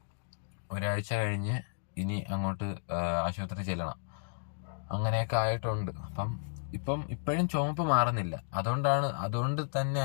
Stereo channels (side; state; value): right; silent; digital silence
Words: ഒരാഴ്ച കഴിഞ്ഞ് ഇനി അങ്ങോട്ട് ആശുപത്രി ചെല്ലണം. അങ്ങനെയൊക്കെ ആയിട്ടുണ്ട്. അപ്പം ഇപ്പോഴും ചുമപ്പ് മാറുന്നില്ല. അതുകൊണ്ട് തന്നെ